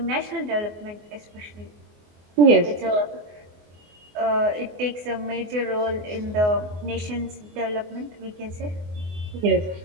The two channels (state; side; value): late; left; 24 ms